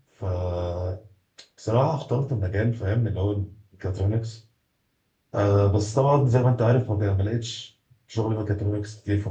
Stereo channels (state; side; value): identical; both; correlation 1.00